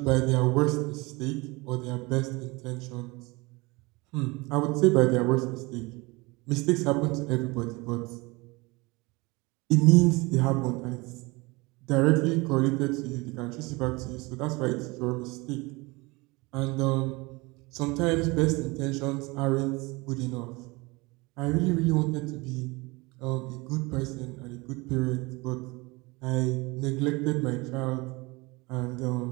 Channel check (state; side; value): quieter; left; 24.7 dB